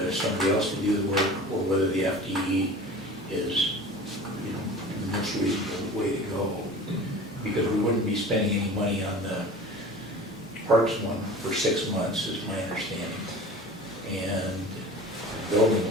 somebody else to do the work, or whether the FTE is, the most reasonable way to go. Because we wouldn't be spending any money on the parks one for 6 months, is my understanding. And the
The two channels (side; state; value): both; normal; correlation 0.39